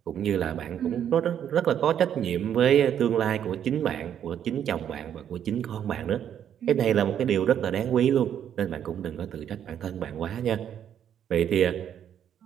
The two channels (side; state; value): left; quieter; 9.4 dB